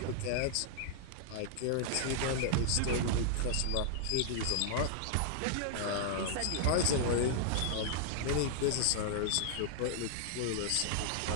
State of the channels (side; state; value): both; different; correlation -0.01